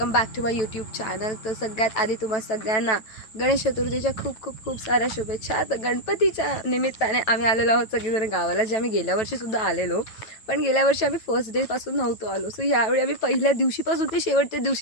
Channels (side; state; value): right; late; 9.1 ms